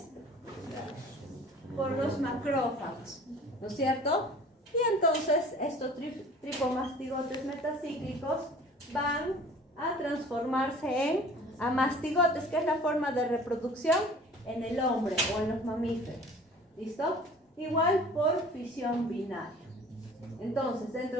Por los macrófagos, ¿no es cierto? Y entonces estos tripomastigotes metacíclicos van a transformarse en amastigotes, que es la forma de reproducción en el hombre o en los mamíferos. ¿Listo? Igual por fisión binaria. Entonces,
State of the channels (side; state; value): both; normal; correlation 0.47